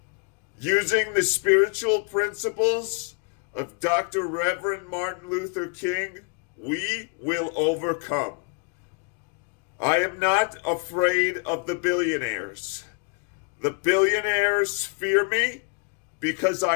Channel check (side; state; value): right; quieter; 37.4 dB